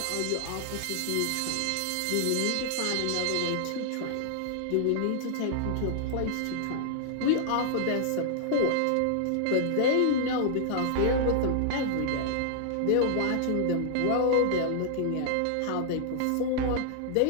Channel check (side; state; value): both; different; correlation -0.01